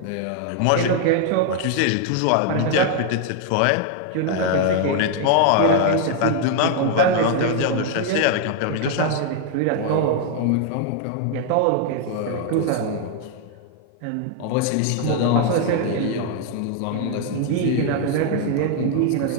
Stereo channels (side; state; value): both; different; correlation 0.00